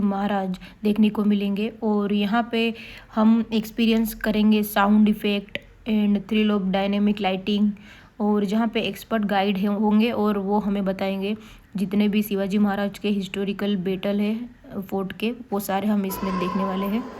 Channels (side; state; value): both; identical; correlation 1.00